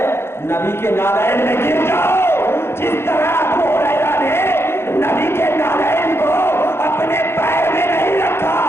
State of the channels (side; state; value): right; late; 0.12 ms